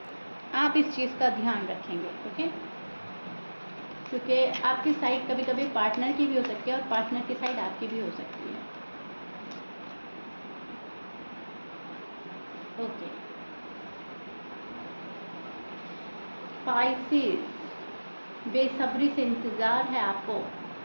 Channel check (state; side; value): inverted; both; correlation -1.00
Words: आप इस चीज़ का ध्यान रखेंगे, ओके? क्योंकि आपकी साइड कभी कभी पार्टनर की भी हो सकती है और पार्टनर की साइड आपकी भी हो सकती है, ओके? पाइसेस, बेसब्री से इंतज़ार है आपको